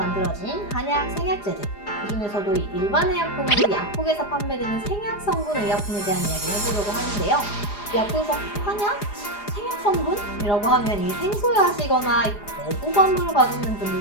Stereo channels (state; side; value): late; right; 4.9 ms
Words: 한약 생약제들, 그 중에서도 이 일반 의약품으로 약국에서 판매되는 생약 성분 의약품에 대한 이야기를 해보려고 하는데요. 약국에서 한약? 생약 성분이라고 하면 이 생소하시거나 거부감을 가지는